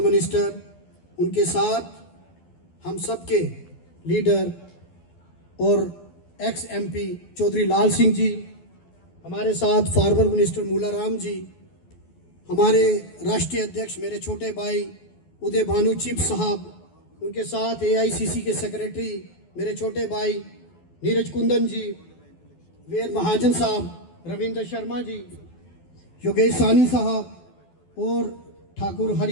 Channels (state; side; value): late; right; 12 ms